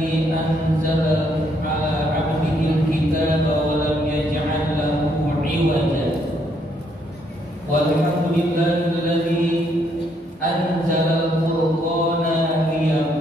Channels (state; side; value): normal; both; correlation 0.72